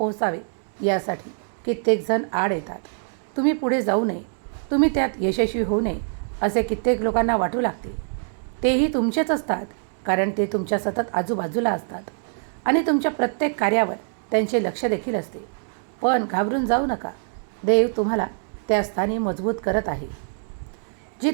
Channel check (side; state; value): left; silent; digital silence